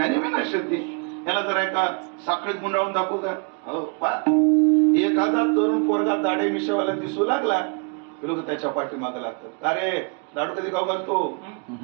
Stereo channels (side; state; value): left; quieter; 34.3 dB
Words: विनश्यते. याला जरा एका साखळीत गुंडाळून दाखवू का? हो, एखादा तरुण पोरगा दाढे मिशावाला दिसू लागला, लोक त्याच्या पाठीमागे लागतात. अरे लाडू कधी खाऊ घालतो?